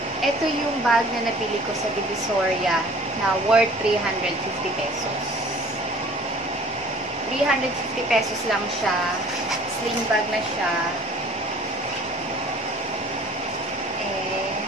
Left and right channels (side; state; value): both; normal; correlation 0.50